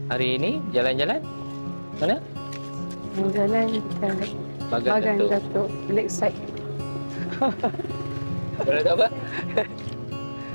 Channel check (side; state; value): both; inverted; correlation -1.00